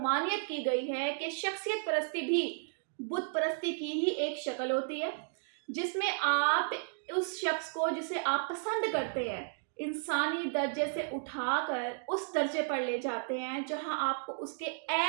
की गई है कि शख्सियत परस्ती भी बुत परस्ती की ही एक शक्ल होती है, जिसमें आप उस शख्स को जिसे आप पसंद करते हैं इंसानी दर्जे से उठाकर उस दर्जे पर ले जाते हैं जहां आपको उसके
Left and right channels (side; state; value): left; silent; digital silence